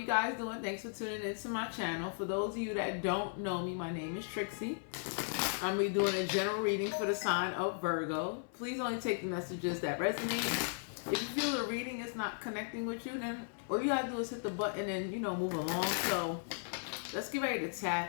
guys doing? Thanks for tuning into my channel. For those of you that don't know me, my name is Trixie. I'm going to be doing a general reading for the sign of Virgo. Please only take the messages that resonate. If you feel the reading is not connecting with you, then all you have to do is hit the button and, move along. So let's get ready to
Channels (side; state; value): right; silent; 54 dB below the other